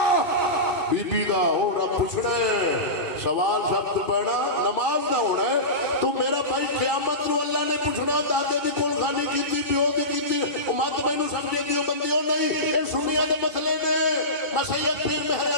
بی بی دا ہو رب پوچھنا ہے سوال سخت پڑھنا نماز دا ہونا ہے تو میرا بھائی قیامت نو اللہ نے پوچھنا دادے دی کول خانی کیتی پیو دی کیتی مت مینوں سمجھے دیو بندیوں نہیں اے سنیا دے مسئلے نے میں سید پیر مہر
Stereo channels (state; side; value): late; right; 2.6 ms